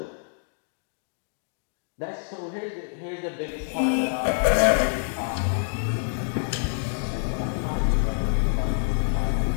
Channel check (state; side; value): silent; right; digital silence